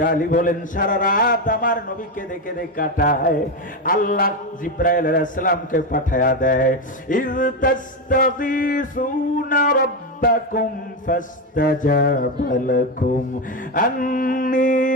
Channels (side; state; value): both; normal; correlation 0.12